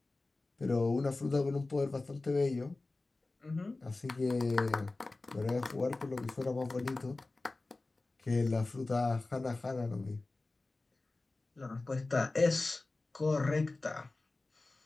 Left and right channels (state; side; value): quieter; right; 3.2 dB